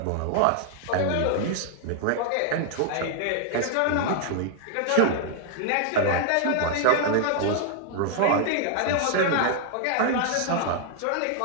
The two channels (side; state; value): both; different; correlation 0.00